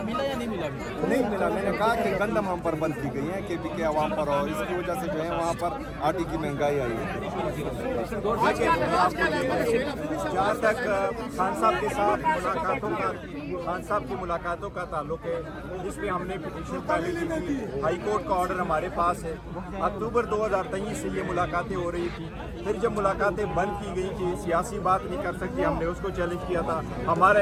मिला या नहीं मिला? नहीं मिला। मैंने कहा कि गंदम हम पर बंद की गई है KP के अवाम पर, और इसकी वजह से जो है वहाँ पर आटे की महंगाई आई है। जहाँ तक खान साहब के साथ खान साहब की मुलाकातों का ताल्लुक है, जिसमें हमने पिटीशन पहले दी थी, हाई कोर्ट का ऑर्डर हमारे पास है। अक्टूबर 2023 से ये मुलाकातें हो रही थी। फिर जब मुलाकातें बंद की गई कि सियासी बात नहीं कर सकती, हमने उसको चैलेंज किया था, हमारा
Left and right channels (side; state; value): both; identical; correlation 1.00